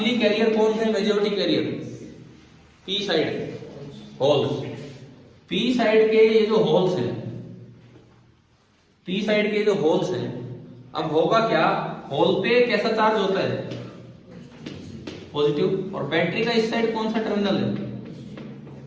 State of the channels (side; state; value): both; identical; correlation 1.00